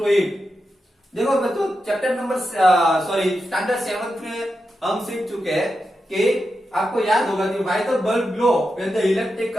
it? देखो बच्चों, चैप्टर नंबर स्टैंडर्ड 7 में हम सीख चुके हैं कि आपको याद होगा कि why the bulb glow when the electric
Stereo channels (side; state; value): both; normal; correlation 0.88